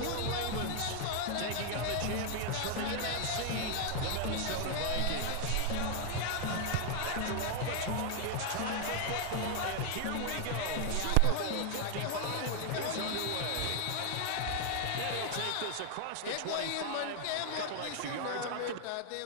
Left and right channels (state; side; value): different; both; correlation 0.00